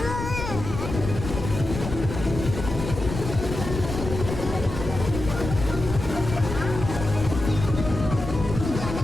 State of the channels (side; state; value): left; noise; rumble, 6 dB below the sound